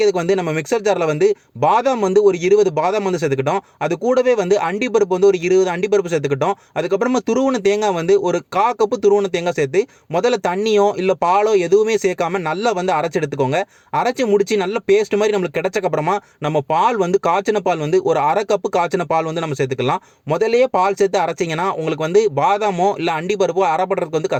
வந்து நம்ம மிக்சர் ஜாரில் வந்து பாதாம் வந்து ஒரு 20 பாதாம் வந்து சேர்த்துக்கிட்டோம். அது கூடவே வந்து அண்டிப்பருப்பு வந்து ஒரு 20 அண்டிப்பருப்பு சேர்த்துக்கிட்டோம். அதுக்கப்புறமா துருவன தேங்காய் வந்து ஒரு 1/4 கப்பு துருவன தேங்காய் சேர்த்து முதல்ல தண்ணியோ இல்லை பாலோ எதுவுமே சேர்க்காம நல்லா வந்து அரைச்சு எடுத்துக்கோங்க. அரைச்சு முடிச்சு நல்ல பேஸ்ட் மாதிரி நம்மளுக்கு கிடைச்சக்கு அப்புறமா நம்ம பால் வந்து காய்ச்சின பால் வந்து ஒரு 1/2 கப்பு காய்ச்சின பால் வந்து நம்ம சேர்த்துக்கலாம். முதல்லயே பால் சேர்த்து அரைச்சிங்கன்னா உங்களுக்கு வந்து பாதாமோ இல்லை அண்டிப்பருப்போ அரைப்படுறதுக்கு வந்து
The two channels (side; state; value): both; identical; correlation 1.00